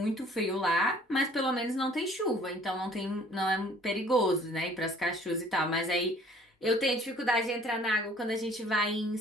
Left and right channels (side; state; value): both; normal; correlation 0.55